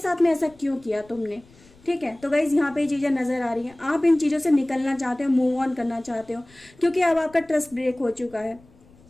में ऐसा क्यों किया तुमने। ठीक है, तो गाइज यहाँ पे ये चीजें नजर आ रही हैं। आप इन चीजों से निकलना चाहते हो, मूव ऑन करना चाहते हो, क्योंकि अब आपका ट्रस्ट ब्रेक हो चुका है।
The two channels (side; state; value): left; noise; rumble, 27 dB below the sound